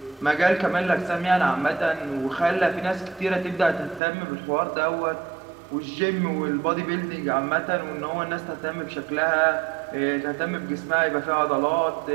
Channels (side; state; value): left; drops out; at 4.0 s